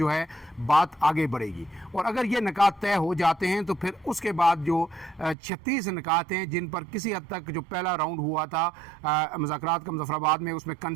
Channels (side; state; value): left; drops out; at 5.4 s